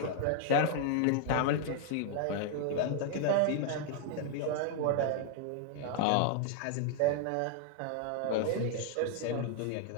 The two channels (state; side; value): different; both; correlation 0.00